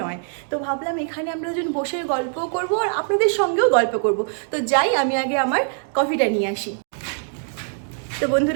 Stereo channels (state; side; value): silent; left; 64 dB below the other